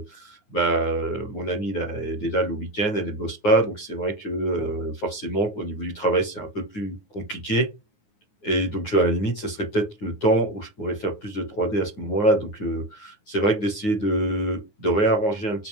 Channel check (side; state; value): right; late; 9.6 ms